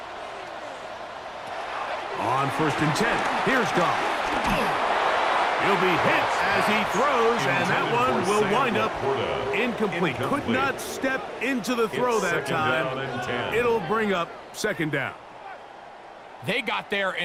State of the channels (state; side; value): identical; both; correlation 1.00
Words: On 1st and 10, here's Goff. He'll be hit as he throws, and that one will wind up incomplete. Could not step into the throw that time. It'll bring up 2nd down. They got there